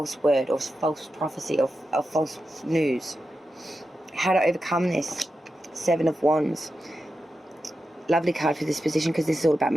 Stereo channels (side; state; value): both; normal; correlation 0.90